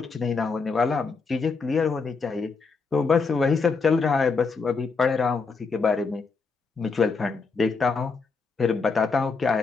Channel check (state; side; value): quieter; right; 4.6 dB